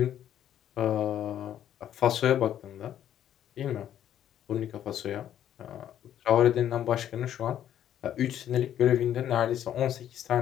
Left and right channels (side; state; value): right; quieter; 10.8 dB